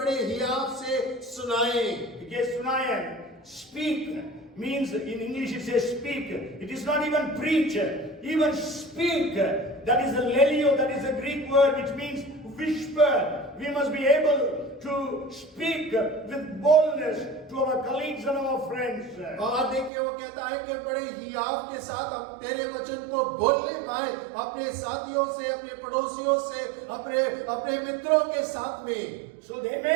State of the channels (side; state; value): left; drops out; at 19.9 s